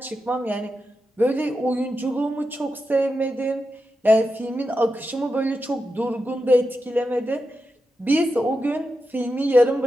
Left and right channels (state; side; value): normal; both; correlation 0.89